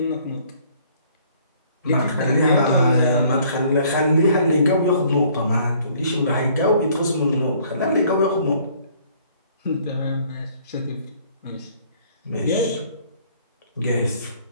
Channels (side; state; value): both; inverted; correlation -0.59